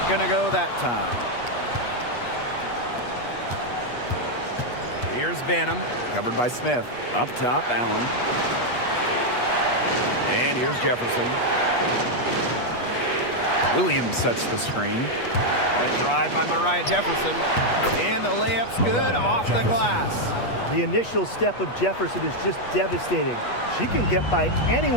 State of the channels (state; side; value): late; right; 8.3 ms